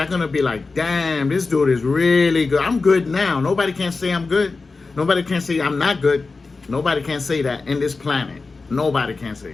gonna be like, damn, this dude is really good. I'm good now. Nobody can say I'm good. Nobody can say I'm not good. Nobody can say that in this planet. Nobody can say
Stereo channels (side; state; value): right; quieter; 4.0 dB